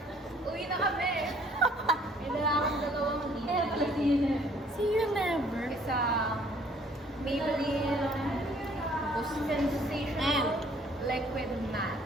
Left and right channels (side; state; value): both; normal; correlation 0.59